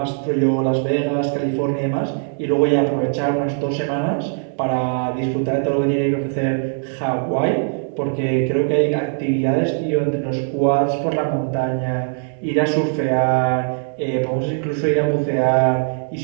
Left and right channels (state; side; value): silent; left; 65 dB below the other